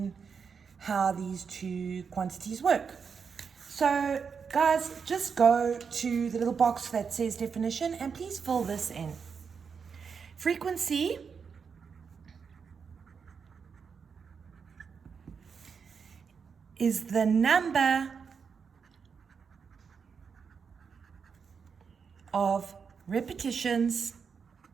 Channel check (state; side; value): quieter; left; 6.1 dB